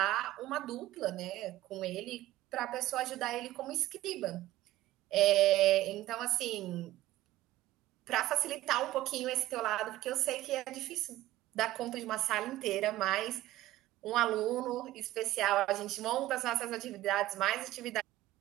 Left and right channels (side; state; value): left; quieter; 15.8 dB